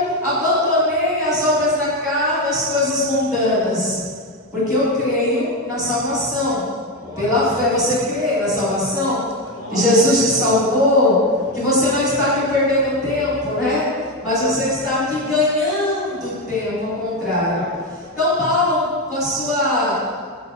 abandonei as obras da carne, as coisas mundanas? Porque eu creio na salvação. Pela fé você crê na salvação? Que Jesus te salvou? Que você não está aqui perdendo tempo, né? Mas você está aqui ganhando tempo, ao contrário. Então Paulo, com a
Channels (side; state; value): both; normal; correlation 0.11